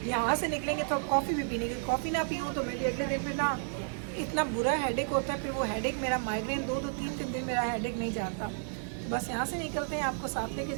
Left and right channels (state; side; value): silent; left; digital silence